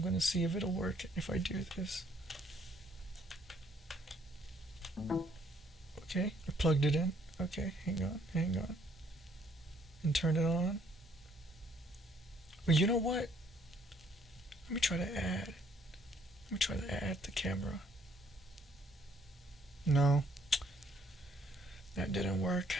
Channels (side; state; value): both; normal; correlation 0.65